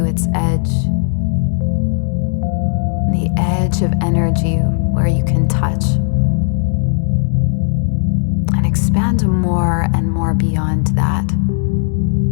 its edge. The edge of energy where you can touch. And expand more and more beyond that.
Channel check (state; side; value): silent; right; digital silence